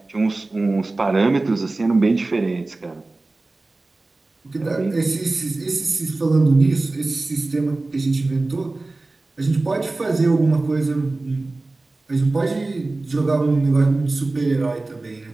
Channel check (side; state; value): left; quieter; 3.2 dB